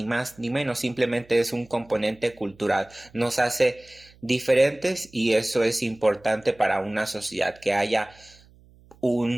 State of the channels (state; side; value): noise; right; hum, 27 dB below the sound